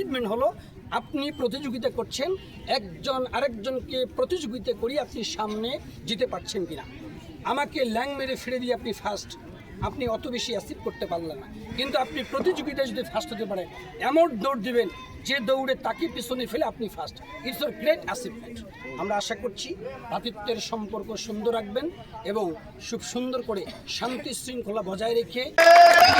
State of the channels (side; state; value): both; identical; correlation 1.00